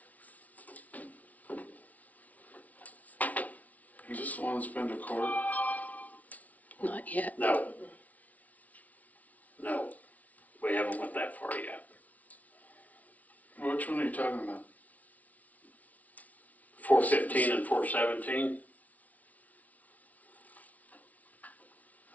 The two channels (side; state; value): right; late; 0.072 ms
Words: Is this the one that's been to court? Not yet. No. No, we haven't went that far yet. Which one are you talking about? 415 and 417.